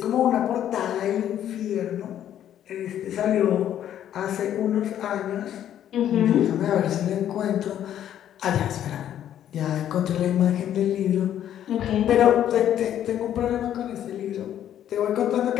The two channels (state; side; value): quieter; right; 10.8 dB